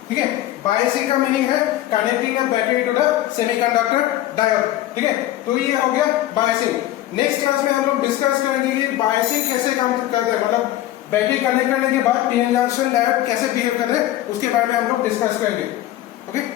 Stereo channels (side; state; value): right; quieter; 14.3 dB